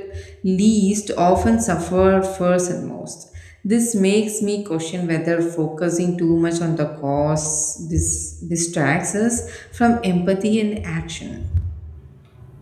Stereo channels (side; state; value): both; identical; correlation 1.00